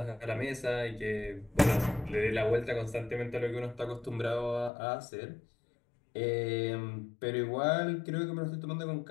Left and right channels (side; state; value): right; drops out; at 4.7 s